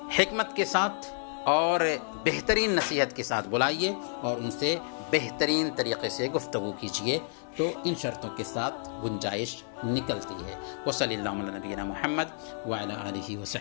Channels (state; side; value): silent; right; 58 dB below the other